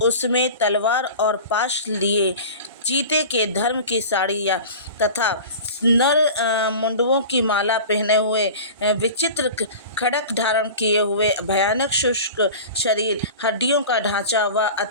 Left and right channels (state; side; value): inverted; both; correlation -0.36